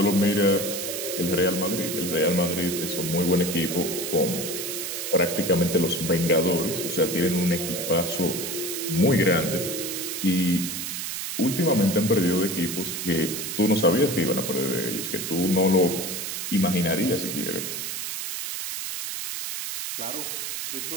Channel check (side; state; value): right; noise; hiss, 4 dB below the sound